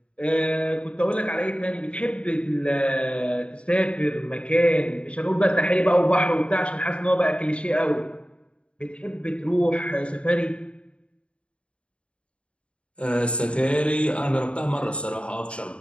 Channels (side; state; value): right; late; 0.058 ms